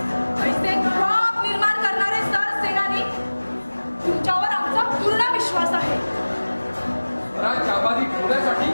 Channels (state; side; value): inverted; both; correlation -1.00